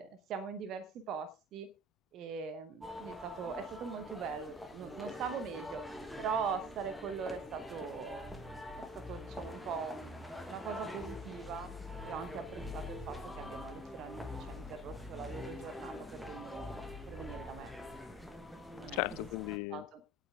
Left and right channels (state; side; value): normal; both; correlation 0.46